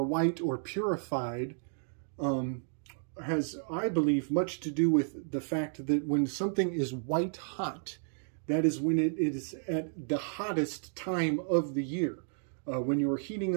white or purified has, I believe, much to do with the fact that when something is white hot, that is when it is at the hottest time of the year. When you are heating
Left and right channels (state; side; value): silent; left; digital silence